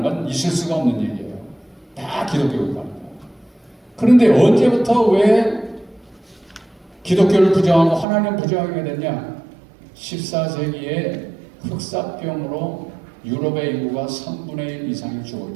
건 있을 수가 없는 얘기예요. 다 기독교 국가입니다. 그런데 언제부터 왜 기독교를 부정하고 하나님 부정하게 됐냐? 14세기에 흑사병으로 유럽의 인구가 3분의 1 이상이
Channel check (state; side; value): drops out; left; at 8.1 s